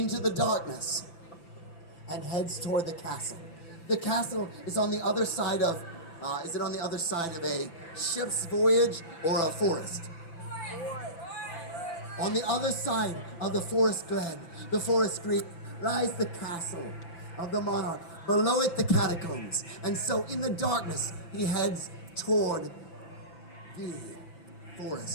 the darkness, and heads toward the castle. The castle is on the other side of, is it on the other side of a ship's voyage or a forest? On the other side of the forest glen, the forest green, lies the castle of the monarch. Below it, the catacombs. And so in the darkness, he heads toward the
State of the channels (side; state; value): right; late; 5.9 ms